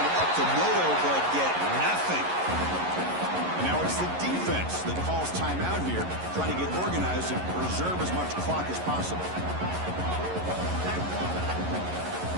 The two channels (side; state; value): left; late; 11 ms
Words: up to Moto, but get nothing. And now it's the defense that calls timeout here, trying to get organized and preserve as much clock as possible.